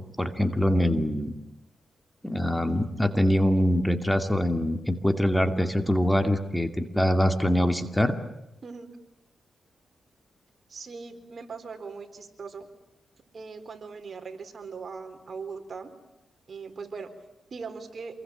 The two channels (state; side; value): normal; both; correlation 0.94